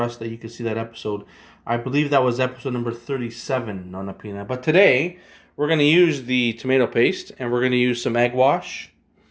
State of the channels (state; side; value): identical; both; correlation 1.00